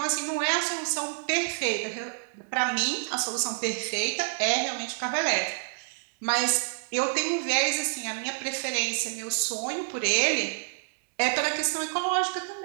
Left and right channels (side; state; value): left; silent; digital silence